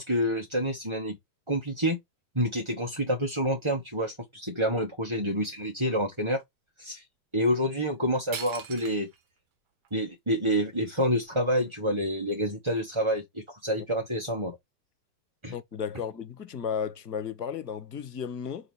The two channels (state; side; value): late; left; 1.4 ms